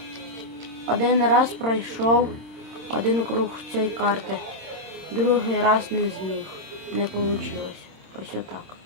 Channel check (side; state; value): left; late; 26 ms